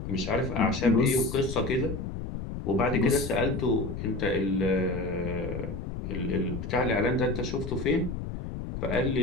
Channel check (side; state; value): left; noise; rumble, 6 dB below the sound